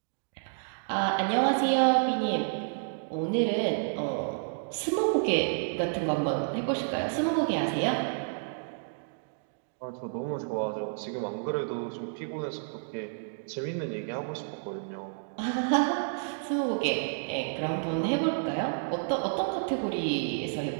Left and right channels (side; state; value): left; silent; digital silence